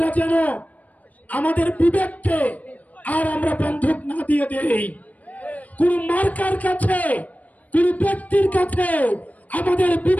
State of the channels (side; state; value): right; late; 0.073 ms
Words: যেন আমাদের বিবেককে আর আমরা বন্ধক না দিয়ে দেই। কোন মার্কার কাছে, কোন ব্যক্তির কাছে আমাদের